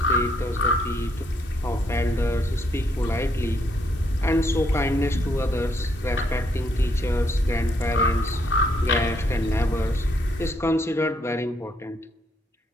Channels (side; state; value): both; normal; correlation 0.73